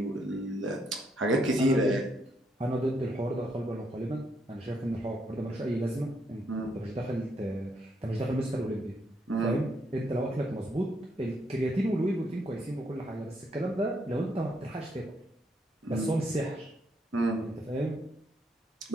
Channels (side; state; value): both; normal; correlation 0.74